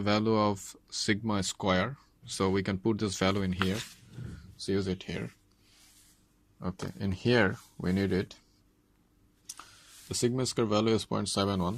of sigma square. So we can put this value in here. So use it here. Okay, in here we need it. The sigma square value is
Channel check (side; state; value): both; identical; correlation 1.00